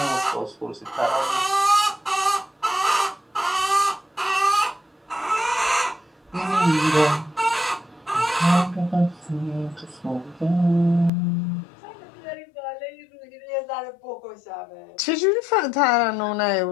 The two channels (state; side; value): drops out; right; at 11.1 s